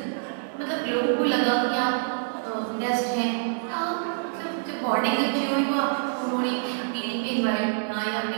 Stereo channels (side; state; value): left; silent; digital silence